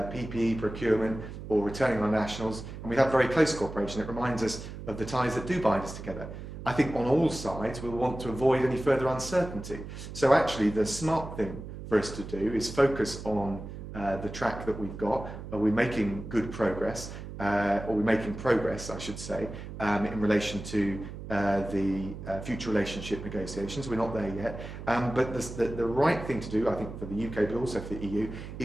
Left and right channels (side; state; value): right; noise; hum, 10 dB below the sound